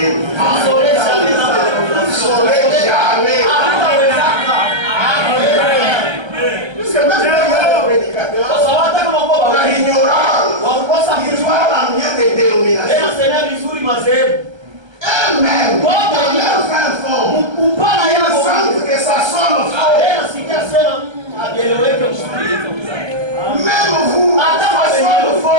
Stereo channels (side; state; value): left; late; 1.3 ms